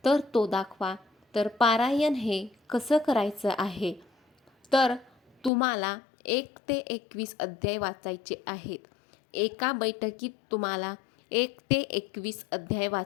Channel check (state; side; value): drops out; right; at 5.5 s